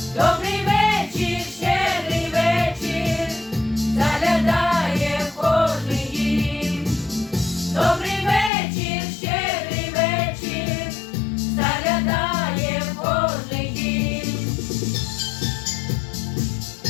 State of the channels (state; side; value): drops out; right; at 8.5 s